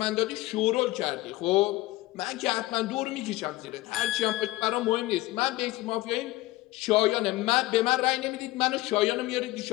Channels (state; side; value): quieter; right; 18.5 dB